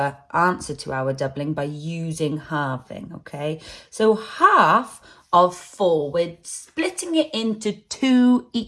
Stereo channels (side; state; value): both; identical; correlation 1.00